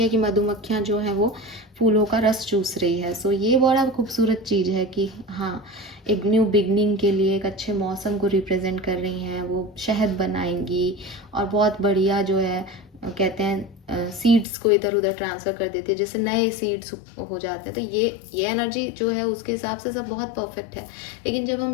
कि मधुमक्खियाँ जो हैं वो फूलों का रस चूस रही है। सो ये बड़ा खूबसूरत चीज़ है कि हाँ, एक न्यू बिगनिंग के लिए एक अच्छे मौसम को रिप्रेजेंट कर रही हैं। वो शहद बनाएंगी और बहुत बढ़िया जो है, कहते हैं सीड्स को इधर उधर ट्रांसफ़र कर देती है, जैसे नए सीड्स हो जाते हैं। तो ये एनर्जी जो है उसके हिसाब से सब बहुत परफेक्ट है। लेकिन जब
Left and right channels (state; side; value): drops out; right; at 14.5 s